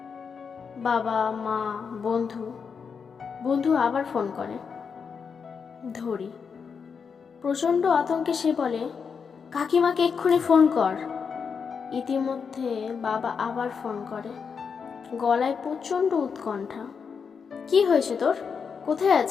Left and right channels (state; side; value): quieter; right; 6.1 dB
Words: বাবা, মা, বন্ধু আবার ফোন করে। ধরি। প্রচণ্ড আতঙ্কে সে বলে, কাকিমাকে এক্ষুনি ফোন কর। ইতিমধ্যে বাবা আবার ফোন করে, গলায় প্রচণ্ড উৎকণ্ঠা। কি হয়েছে তোর? কোথায়